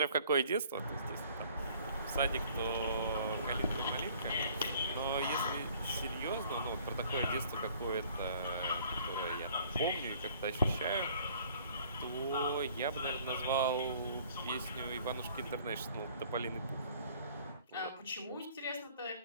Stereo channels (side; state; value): both; inverted; correlation -0.56